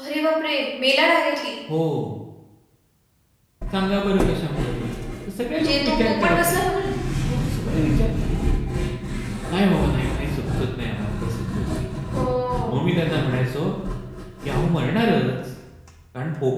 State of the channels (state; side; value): identical; both; correlation 1.00